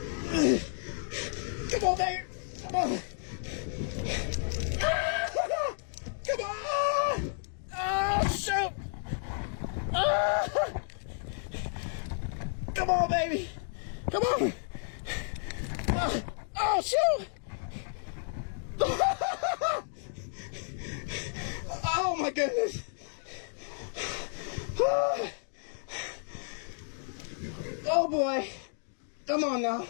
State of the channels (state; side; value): silent; right; digital silence